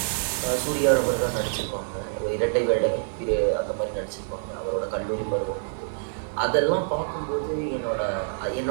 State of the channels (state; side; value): silent; left; digital silence